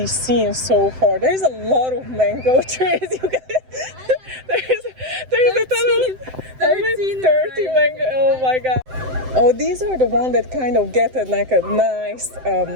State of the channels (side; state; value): left; late; 7.8 ms